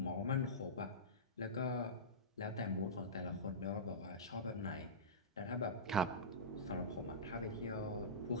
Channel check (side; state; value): both; normal; correlation -0.19